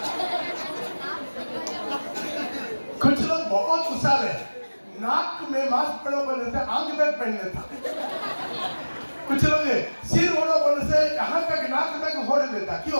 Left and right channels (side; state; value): both; inverted; correlation -1.00